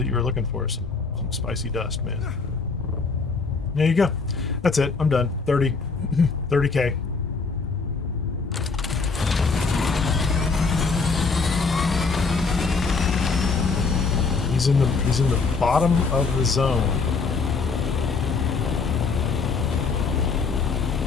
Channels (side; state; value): right; quieter; 4.6 dB